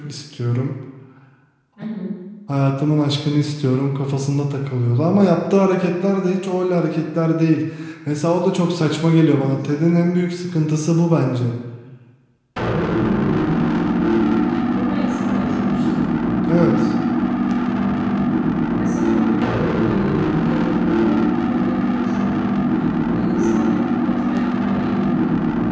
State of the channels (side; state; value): both; identical; correlation 1.00